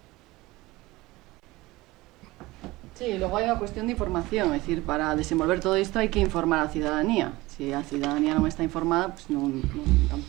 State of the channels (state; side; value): quieter; left; 20.1 dB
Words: Sí, logo hai unha cuestión de información, é dicir, para desenvolver todo isto hai que informar a cidadanía. Se a cidadanía non está informada, pues